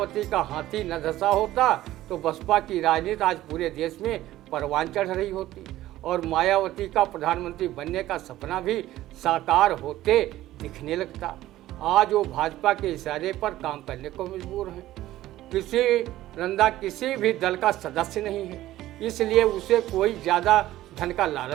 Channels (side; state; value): left; quieter; 14.9 dB